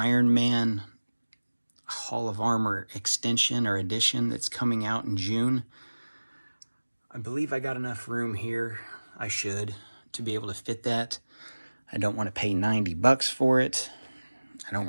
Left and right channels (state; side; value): inverted; both; correlation -1.00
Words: Man Hall of Armor extension or edition that's coming out in June, I believe I got enough room here, I should, to be able to fit that. I don't want to pay 90 bucks for it. I don't